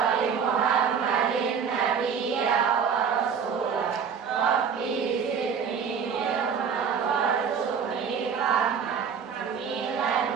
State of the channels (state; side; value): quieter; left; 6.8 dB